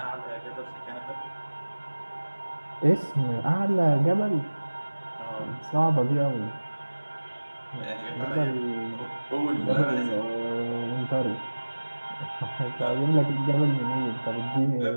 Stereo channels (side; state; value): both; inverted; correlation -1.00